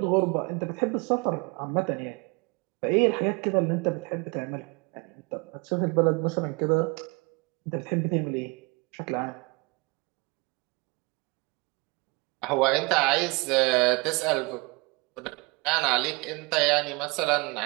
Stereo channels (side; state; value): left; quieter; 27.4 dB